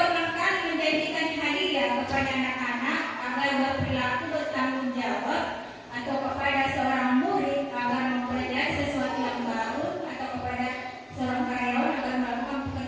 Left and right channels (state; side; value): identical; both; correlation 1.00